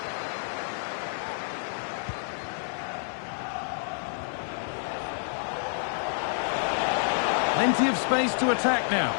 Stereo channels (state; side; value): silent; right; 59 dB below the other